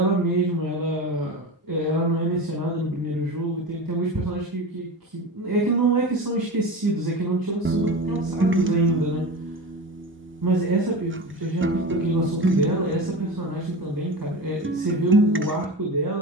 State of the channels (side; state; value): both; normal; correlation 0.28